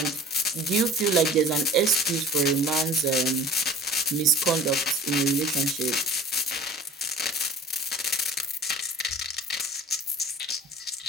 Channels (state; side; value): normal; both; correlation 0.43